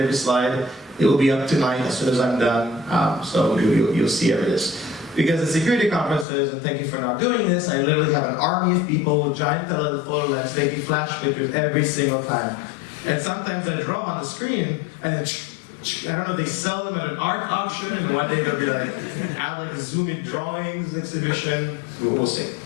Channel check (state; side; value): drops out; right; at 6.2 s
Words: slide. It will be up tonight as soon as I'm done. So you'll see every this. Because at security conferences, and thank you for not doing this, I literally have an army of people with giant telephoto lens taking flash pictures every single time. And sometimes I draw on the screen, and I don't know if they sell them at an art auction, and one day they'll be like, add like a zoom-in drawings exhibition. We'll see.